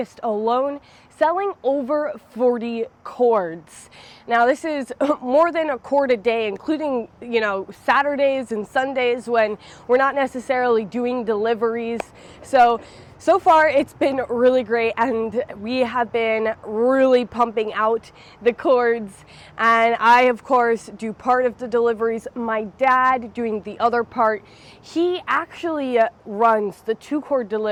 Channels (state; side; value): identical; both; correlation 1.00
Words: alone selling over 40 cords. Now this is more than a cord a day, including, Saturdays and Sundays when we're not necessarily doing deliveries. So far it's been really great, and we have been really pumping out the cords. And I, of course, do part of the deliveries. My dad doing the other part. He actually runs the 2-cord